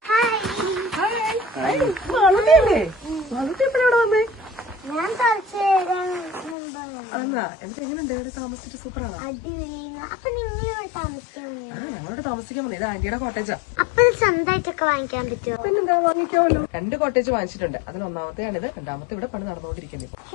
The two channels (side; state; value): right; drops out; at 6.6 s